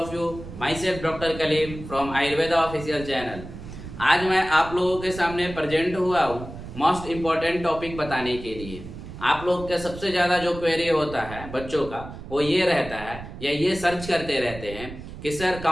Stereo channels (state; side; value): noise; right; rumble, 12 dB below the sound